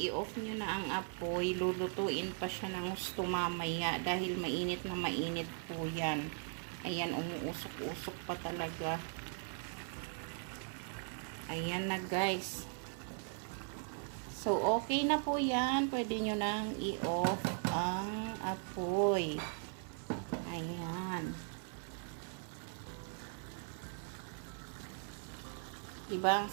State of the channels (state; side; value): silent; left; 52 dB below the other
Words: nyo na ang apoy, lulutuin pa siya ng gusto mamaya dahil mainit na mainit po yan. Ayan, umuusok-usok pa talaga. Ayan na guys. So, okay na po yan. Pwede nyo nang i-off ang apoy. Ayan. Diba ang